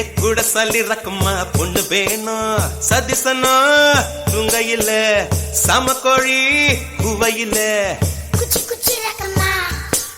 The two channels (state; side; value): identical; both; correlation 1.00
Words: கூட சல்லி ரக்கம்மா பொண்ணு வேணும் சதிசனா துங்கையில சமக்கோழி குவையில குச்சி குச்சி ரக்கம்மா